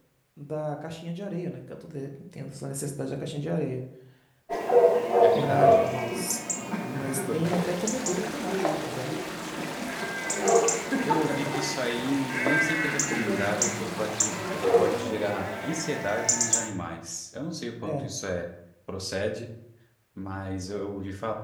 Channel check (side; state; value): both; identical; correlation 1.00